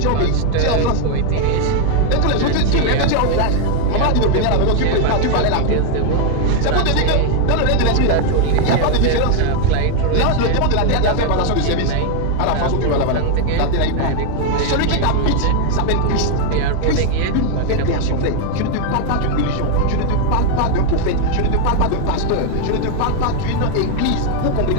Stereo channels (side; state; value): both; different; correlation 0.00